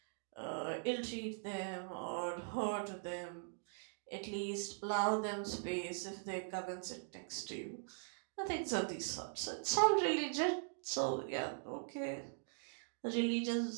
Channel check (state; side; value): silent; left; digital silence